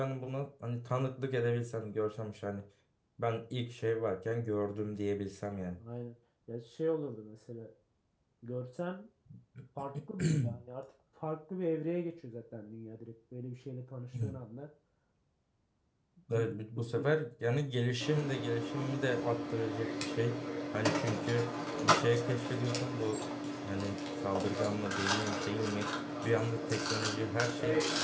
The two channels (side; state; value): both; identical; correlation 1.00